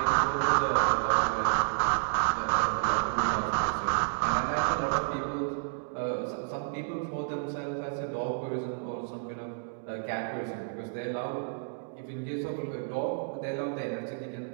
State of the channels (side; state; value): left; silent; digital silence